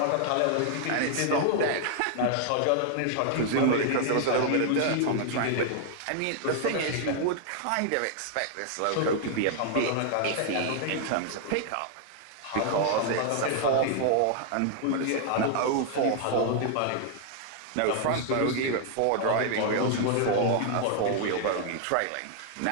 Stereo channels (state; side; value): different; both; correlation 0.00